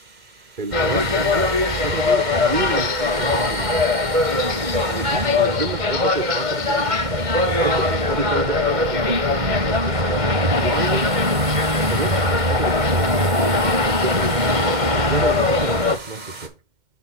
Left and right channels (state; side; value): late; left; 2.1 ms